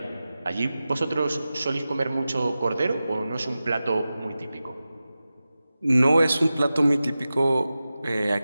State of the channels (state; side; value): inverted; both; correlation -0.94